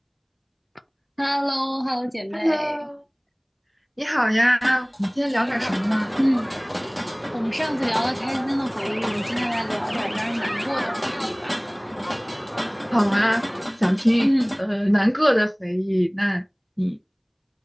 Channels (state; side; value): identical; both; correlation 1.00